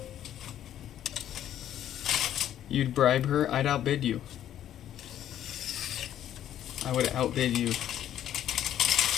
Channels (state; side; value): quieter; right; 11.2 dB